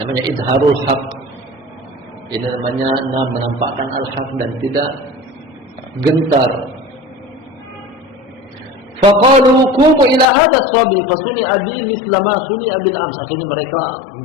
idharul haq. Ini namanya menampakkan al-haq dan tidak gentar. Faqalu qumu ila hadha as-sabi fasuni abi misla ma suni abil ams. Akhirnya mereka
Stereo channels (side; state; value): right; drops out; at 10.2 s